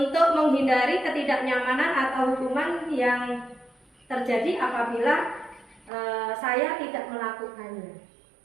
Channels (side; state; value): left; drops out; at 5.9 s